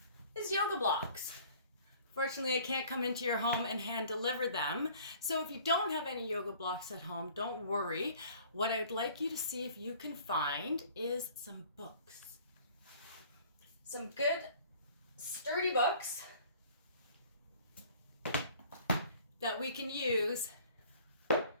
is yoga blocks. Fortunately, I can't come into your home and hand deliver them. So if you don't have any yoga blocks at home, don't worry. What I'd like you to see if you can find is some books. Some good, sturdy books that we can use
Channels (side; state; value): both; inverted; correlation -0.52